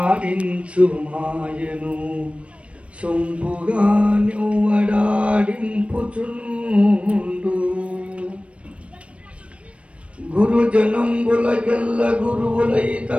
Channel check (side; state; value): left; late; 0.062 ms